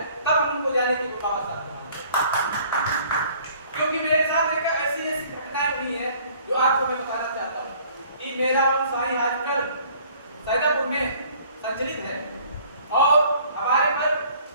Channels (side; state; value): both; inverted; correlation -0.55